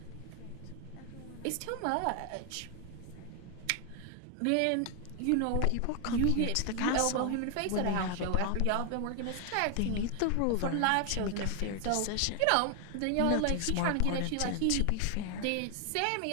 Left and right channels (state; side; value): different; both; correlation 0.00